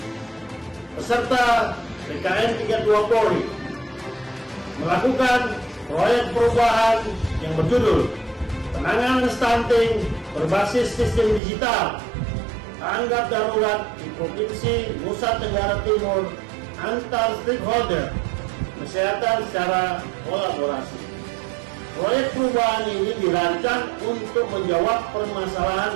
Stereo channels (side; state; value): left; drops out; at 11.4 s